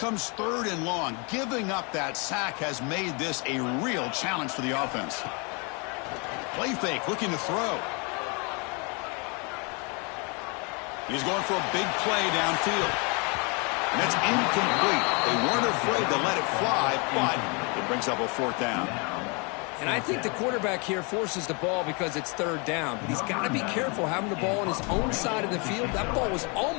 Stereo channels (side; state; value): right; quieter; 32.4 dB